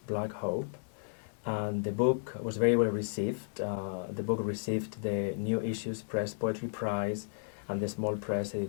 Black Hope, and the book was very well received. The book received the New Issues Press Poetry Prize and the Small Press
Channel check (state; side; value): silent; right; digital silence